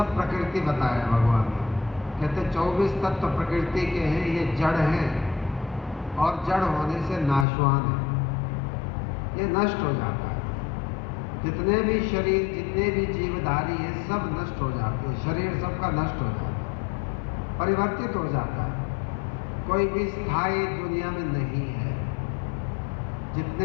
प्रकृति बताया भगवान ने। कहते 24 तत्व प्रकृति के हैं, ये जड़ हैं और जड़ होने से नाशवान है, ये नष्ट हो जाता है। जितने भी शरीर, जितने भी जीवधारी हैं, सब नष्ट हो जाते हैं। शरीर सबका नष्ट हो जाता है, परिवर्तित हो जाता है। कोई भी स्थायी दुनिया में नहीं है।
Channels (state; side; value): drops out; right; at 7.5 s